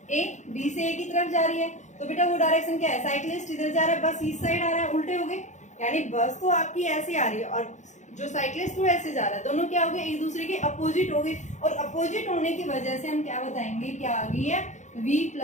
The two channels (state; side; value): late; right; 0.35 ms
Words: A, B से ए की तरफ जा रही है। तो बेटा वो डायरेक्शन क्या है, साइक्लिस्ट इधर जा रहा है, बस इस साइड आ रहा है, उल्टे हो गए, यानी बस तो आपकी ऐसे आ रही है और जो साइक्लिस्ट वो ऐसे जा रहा है, दोनों क्या हो गए, एक दूसरे के अपोजिट हो गए। और अपोजिट होने की वजह से हम क्या बताएंगे, क्या आ गई है,